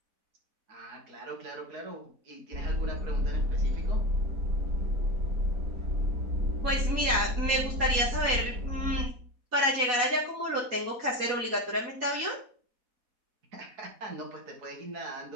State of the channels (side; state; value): left; late; 4.1 ms